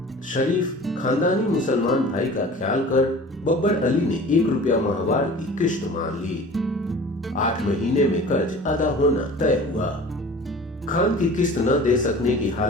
शरीफ खानदानी मुसलमान भाई का ख्याल कर बब्बर अली ने 1 रुपया माहवार की किश्त मान ली। 8 महीने में कर्ज अदा होना तय हुआ। खान की किस्त न दे सकने की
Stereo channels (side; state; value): both; normal; correlation 0.42